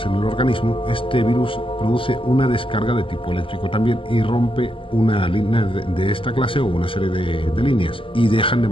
en el organismo, este virus produce una descarga de tipo eléctrico también y rompe una línea de esta clase o una serie de líneas y dejan de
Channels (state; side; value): late; right; 0.25 ms